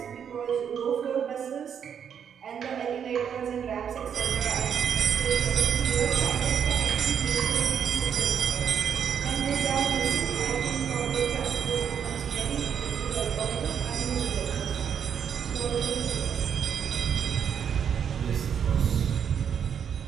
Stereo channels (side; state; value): left; quieter; 7.9 dB